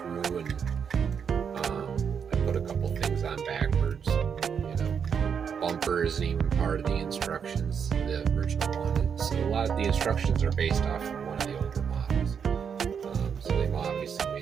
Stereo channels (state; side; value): quieter; left; 7.0 dB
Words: and I put a couple things on backwards. Bumper isn't even part of the instructions, the original one. So a lot of the instructions are based off of one of the older models. So they've obviously